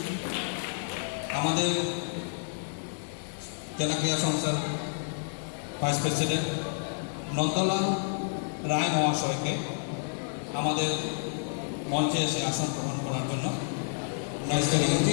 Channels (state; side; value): silent; right; digital silence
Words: আমাদের জেলা ক্রীড়া সংস্থার ভাইস প্রেসিডেন্ট নন্দলাল রায় মহাশয়কে আমাদের মঞ্চে এসে আসন গ্রহণ করার জন্য